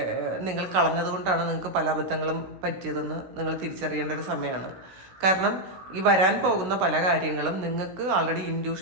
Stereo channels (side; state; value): left; late; 16 ms